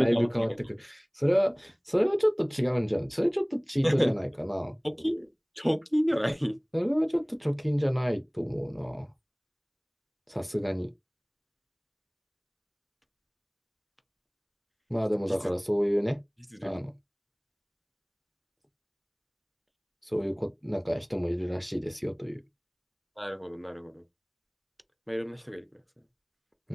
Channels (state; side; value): identical; both; correlation 1.00